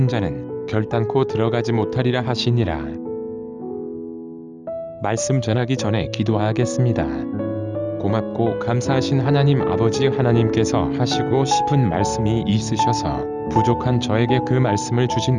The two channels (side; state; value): both; identical; correlation 1.00